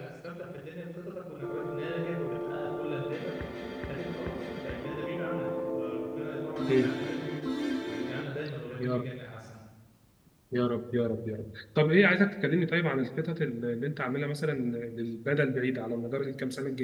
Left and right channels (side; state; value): both; identical; correlation 1.00